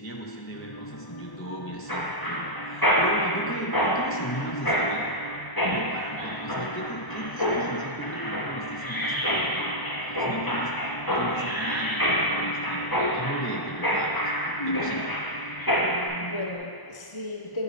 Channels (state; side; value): late; right; 1.0 ms